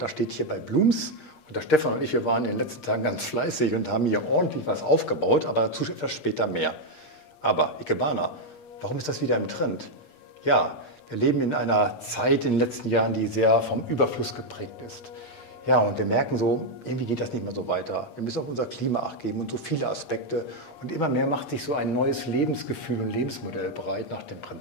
da steht hier bei Blooms und der Stefan und ich, wir waren in den letzten Tagen ganz fleißig und haben hier ordentlich was aufgebaut, aber dazu etwas später mehr. Aber Ikebana, warum ist das wieder im Trend? Ja, wir leben in einer Zeit in den letzten Jahren, die sehr vom Überfluss geprägt ist. Ja, und wir merken so, irgendwie geht das nicht mehr so weiter. Wir müssen auf unser Klima Acht geben und so viele Aspekte. Und immer mehr macht sich so ein neues Lebensgefühl und Lebensmodell bereit nach dem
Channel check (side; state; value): right; late; 8.6 ms